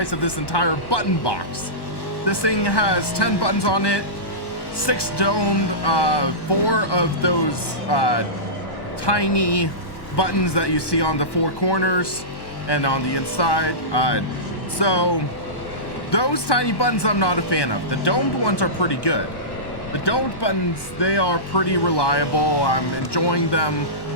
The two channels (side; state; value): right; late; 1.2 ms